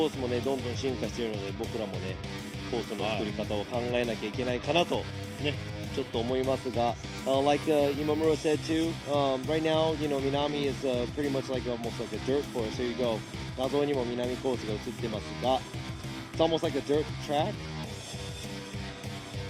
ースもねどんどん進化しているので、僕らもねコースの作り方を考えなきゃいけないかなとねちょっと思いますが、like Imamura said too, right now Minami is pretty much like almost like a dirt course. Here you go. 画像にも南コースが映ってますが、it's almost like a dirt track,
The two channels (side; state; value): both; identical; correlation 1.00